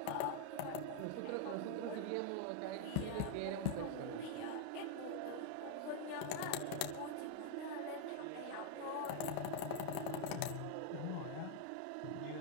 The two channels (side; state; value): both; different; correlation 0.00